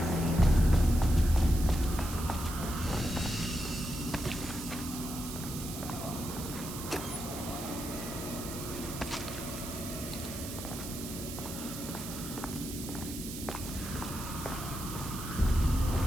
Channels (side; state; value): right; noise; hiss, 9 dB below the sound